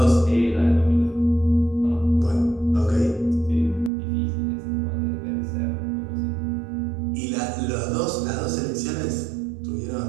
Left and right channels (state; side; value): drops out; left; at 3.9 s